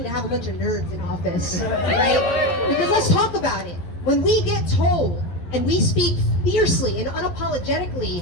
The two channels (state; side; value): late; right; 11 ms